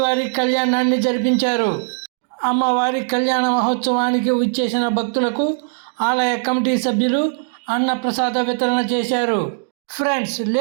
కళ్యాణాన్ని జరిపించారు. అమ్మవారి కళ్యాణ మహోత్సవానికి విచ్చేసిన భక్తులకు ఆలయ కమిటీ సభ్యులు అన్న ప్రసాద వితరణ చేశారు. ఫ్రెండ్స్,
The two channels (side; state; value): left; silent; digital silence